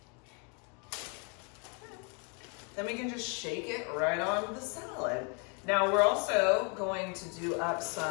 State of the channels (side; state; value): right; quieter; 36.5 dB